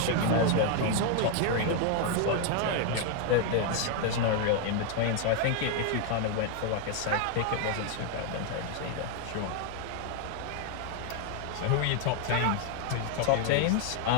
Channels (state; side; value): different; both; correlation 0.01